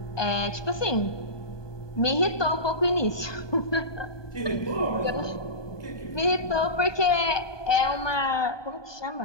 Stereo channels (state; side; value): late; right; 1.2 ms